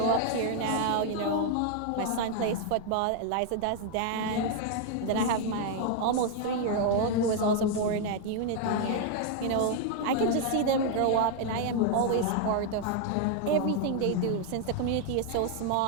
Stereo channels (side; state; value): both; different; correlation 0.00